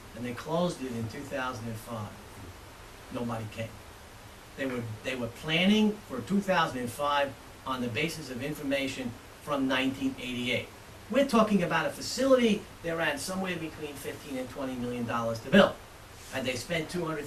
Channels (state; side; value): identical; both; correlation 1.00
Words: and they closed it in 2005. Nobody came. They were planning for 2005 on the basis of information from 1988. We're talking about a facility that ran somewhere between $15 and $20 million to build. Had they spent